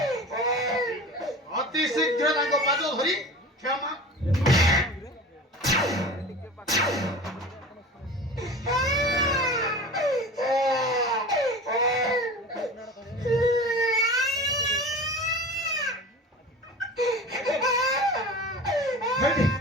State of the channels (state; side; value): normal; both; correlation 0.36